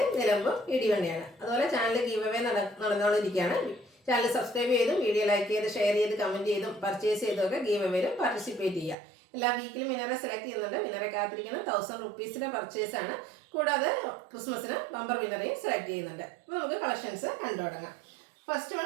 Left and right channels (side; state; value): left; drops out; at 9.0 s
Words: നിലമ്പൂർ ഇടിവണ്ടിയാണ്. അതുപോലെ ചാനൽ ഗീവ് അവേ നടന്നുകൊണ്ടിരിക്കുകയാണ്. ചാനൽ സബ്സ്ക്രൈബ് ചെയ്തും വീഡിയോ ലൈക്ക് ചെയ്ത് ഷെയർ ചെയ്ത് കമൻറ്റ് ചെയ്തും പർച്ചേസ് ചെയ്തൊക്കെ ഗീവ് അവേയിലും പാർട്ടിസിപ്പേറ്റ് ചെയ്യുക. എല്ലാ വീക്കിലും വിനറെ സെലക്ട് ചെയ്യുന്നുണ്ട്. വിനറെ കാത്തിരിക്കുന്നത് 1000 റുപ്പീസിൻ്റെ പർച്ചേസാണ്. കൂടാതെ ക്രിസ്മസിന് ബമ്പർ വിനറേയും സെലക്ട് ചെയ്യുന്നുണ്ട്. അപ്പോൾ നമുക്ക് കളക്ഷൻസ് കണ്ടു തുടങ്ങാം. First